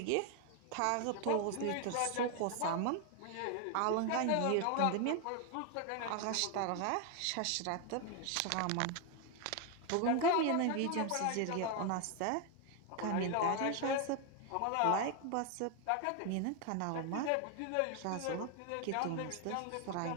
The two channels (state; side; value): different; both; correlation 0.01